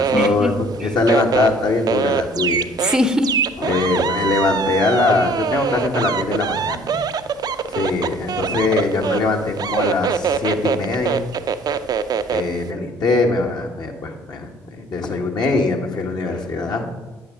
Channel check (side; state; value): both; normal; correlation 0.55